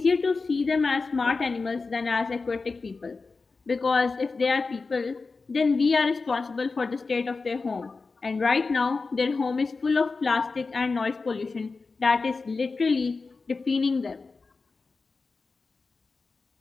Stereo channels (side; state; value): right; quieter; 4.2 dB